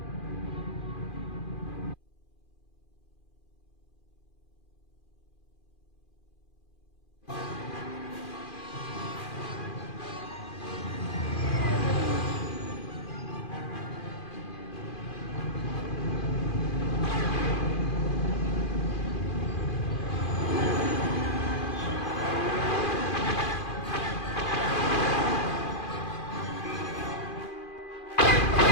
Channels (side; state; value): right; late; 2.4 ms